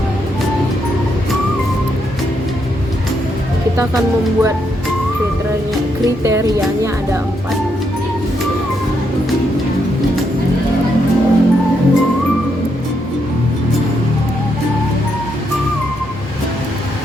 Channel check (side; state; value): both; normal; correlation 0.78